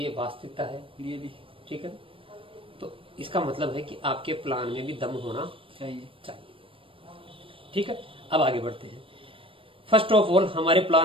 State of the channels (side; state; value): left; late; 0.26 ms